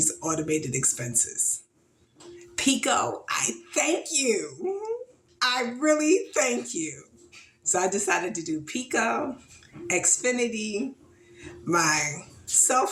automated expenses. Pico, I thank you. I really thank you. So I decided to do Pico, Xfinity, my cell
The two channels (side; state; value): both; identical; correlation 1.00